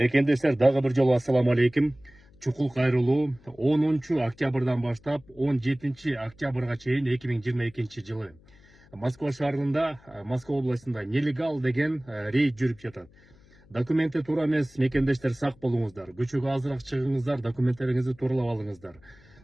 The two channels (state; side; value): noise; left; hum, 27 dB below the sound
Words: дагы бир жолу ассаламу алейкум. Чукул кайрылуу 10 октябрдан баштап 17 октябрга чейин 2022 жылы Москва шаарында, Москва областында нелегал деген рейд жүрүп жатат. Документи туура эмес, мекендештер сак болуңуздар. Көчөгө азыраак чыгыңыздар, документтериңизди тууралап алыңыздар.